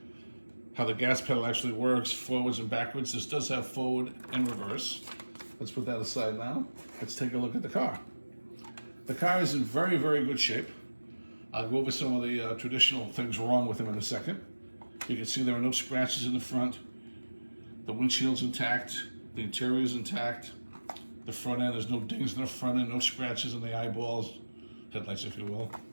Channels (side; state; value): both; inverted; correlation -1.00